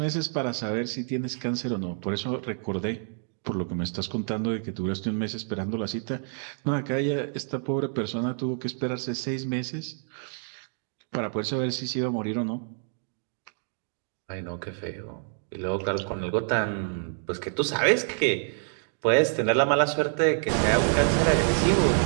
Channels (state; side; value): silent; left; 58 dB below the other